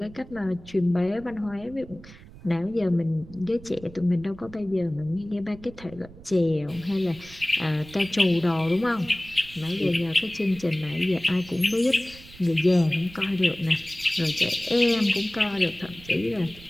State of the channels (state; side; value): noise; right; rumble, 19 dB below the sound